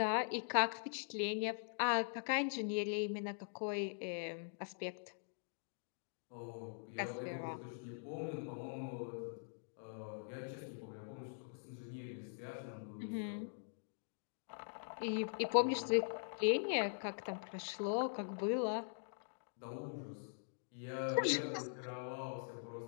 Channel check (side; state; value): right; silent; digital silence